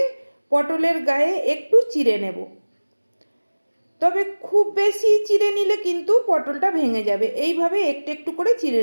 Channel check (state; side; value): inverted; both; correlation -1.00